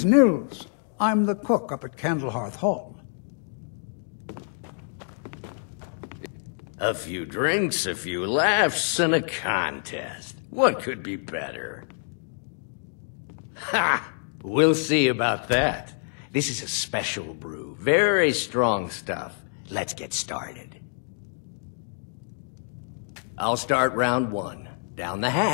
Nils. I'm the cook up at Candlehearth Hall. A few drinks, a few laughs, and a contest. What could be better? Ha! We'll see about that. This is a special brew. Very strong stuff. Let's get started. I'll start round one. Down the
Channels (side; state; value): right; silent; digital silence